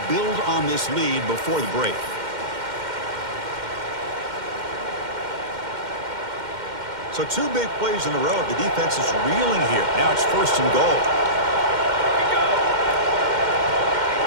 build on this lead before the break. So 2 big plays in a row. The defense is reeling here. Now it's first and goal.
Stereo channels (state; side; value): late; left; 2.1 ms